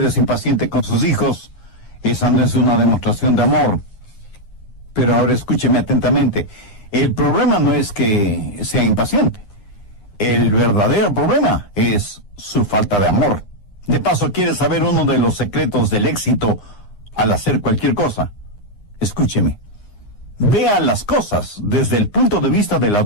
es impaciente con sus hijos, esa no es una demostración de amor. Pero ahora escúcheme atentamente. El problema no es que sea impaciente. El verdadero problema es su falta de amor. De paso, ¿quiere saber uno de los secretos del éxito al hacer cualquier cosa? Escúcheme. Vea las cosas desde el punto de vista de la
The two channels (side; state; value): right; late; 9.8 ms